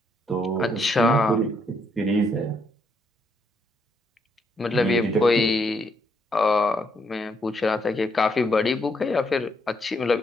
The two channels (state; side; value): normal; both; correlation 0.74